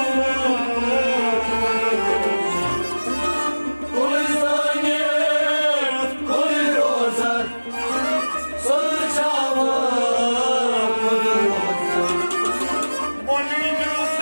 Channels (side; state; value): both; inverted; correlation -1.00